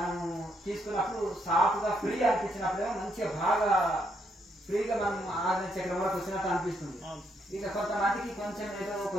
తీసుకున్నప్పుడు సాఫ్ట్గా ఫ్రీ అనిపించినప్పుడేమో మంచిగా బాగా ఫ్రీగా మనం 6 చక్రం వరకు వచ్చినట్టు అనిపిస్తుంది. ఇక కొంతమందికి కొంచెం ఏదో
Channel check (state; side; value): normal; both; correlation 0.75